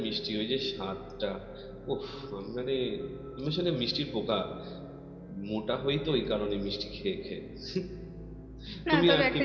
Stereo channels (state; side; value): identical; both; correlation 1.00